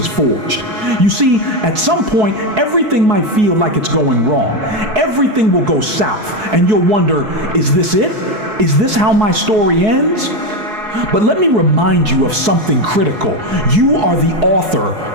forged. You see, at some point, everything might feel like it's going wrong. Everything will go south, and you'll wonder, is this it? Is this how my story ends? But let me remind you of something critical. You are the author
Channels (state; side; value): late; left; 4.7 ms